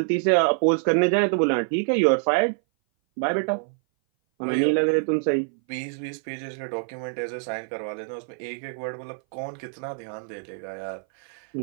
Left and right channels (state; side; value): silent; left; 58 dB below the other